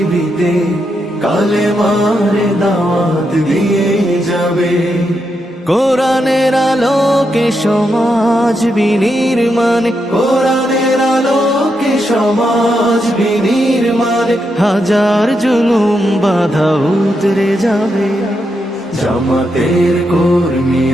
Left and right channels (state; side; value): normal; both; correlation 0.83